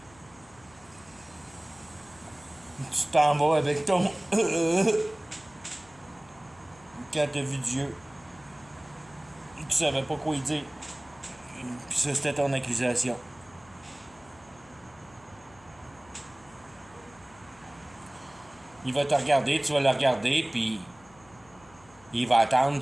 Tu t'en vas avec ton quand t'as vu Dieu. Tu savais pas quoi y dire. Puis ça, c'était ton accusation. Il va te regarder, tu vas le regarder, puis il va attendre,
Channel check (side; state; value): left; noise; hum, 26 dB below the sound